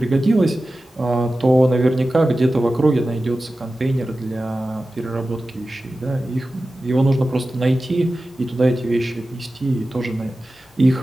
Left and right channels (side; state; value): both; normal; correlation 0.94